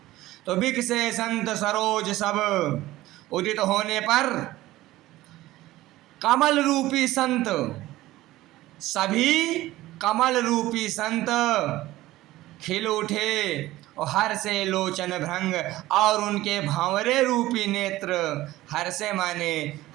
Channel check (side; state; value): left; quieter; 16.6 dB